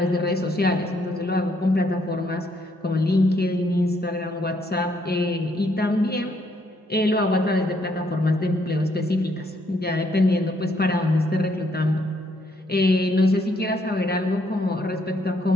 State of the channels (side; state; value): both; normal; correlation 0.71